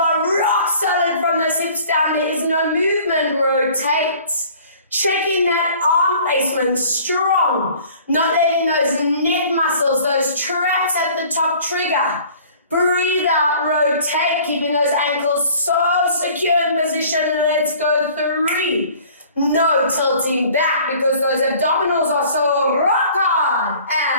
rock solid from those hips down. There is no movement. Rotate. Checking that arm placement strong, not letting those neck muscles, those traps at the top trigger. Breathe out, rotate, keeping those ankles so secure in position. Let's go 3. No tilting back because those abdominals are so rock hard.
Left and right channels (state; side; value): inverted; both; correlation -0.51